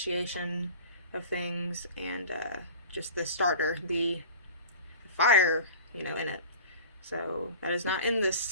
of things, and just the starter, the fire, you know, in it. So that is not in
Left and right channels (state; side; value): inverted; both; correlation -0.39